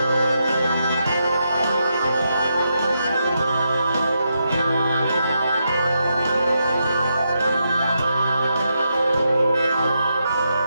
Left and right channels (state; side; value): inverted; both; correlation -0.83